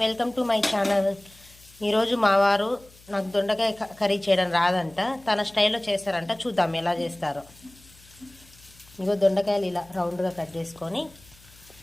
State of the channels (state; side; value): noise; left; hum, 26 dB below the sound